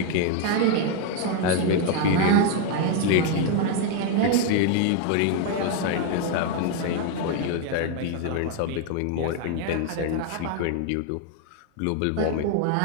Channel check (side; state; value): both; different; correlation 0.01